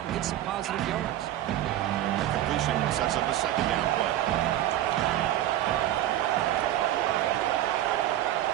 and gets some positive yards. The completion sets up a second down play.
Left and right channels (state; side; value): quieter; left; 13.2 dB